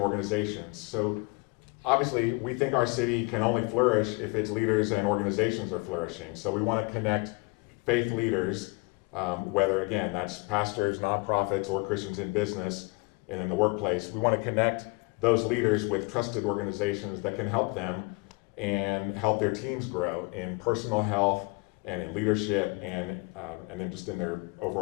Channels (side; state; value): right; quieter; 28.2 dB